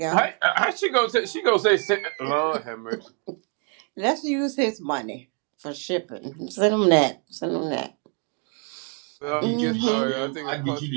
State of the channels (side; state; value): left; quieter; 35.4 dB